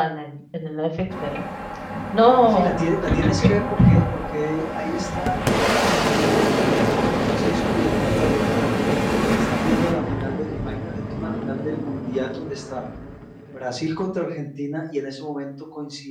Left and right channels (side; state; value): both; identical; correlation 1.00